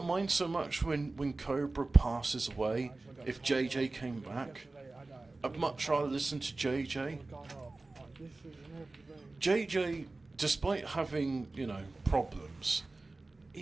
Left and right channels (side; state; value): left; quieter; 3.3 dB